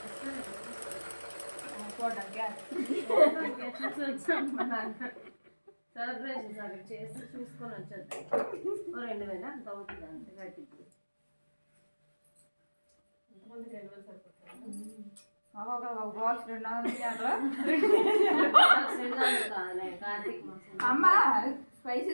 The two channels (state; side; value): inverted; both; correlation -1.00